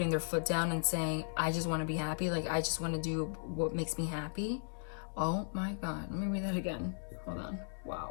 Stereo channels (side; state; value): right; silent; 54 dB below the other